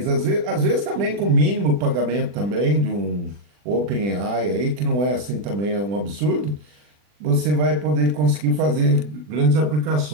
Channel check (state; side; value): late; left; 40 ms